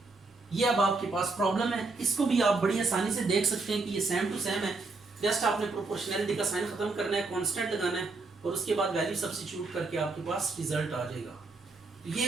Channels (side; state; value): left; quieter; 3.7 dB